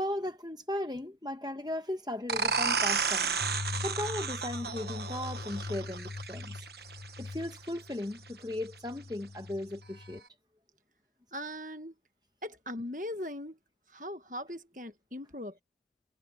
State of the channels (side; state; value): both; normal; correlation 0.32